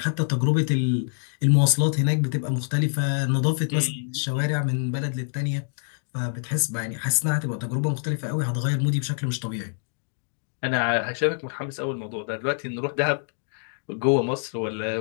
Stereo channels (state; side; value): silent; right; digital silence